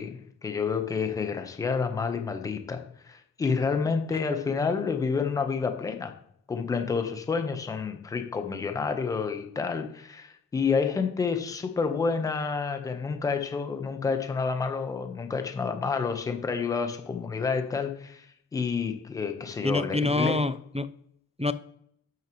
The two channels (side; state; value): right; quieter; 4.6 dB